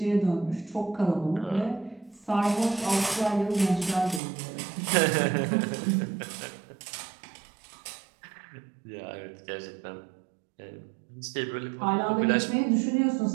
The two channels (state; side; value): drops out; left; at 4.2 s